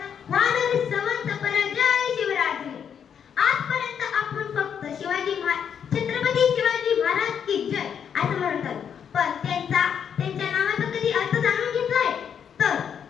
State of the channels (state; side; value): quieter; right; 7.9 dB